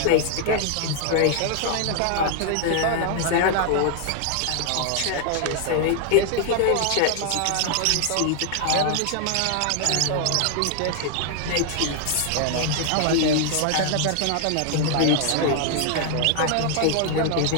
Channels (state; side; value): different; both; correlation 0.00